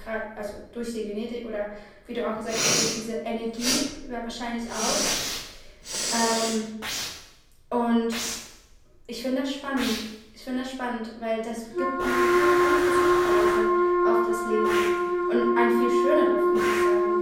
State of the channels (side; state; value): both; identical; correlation 1.00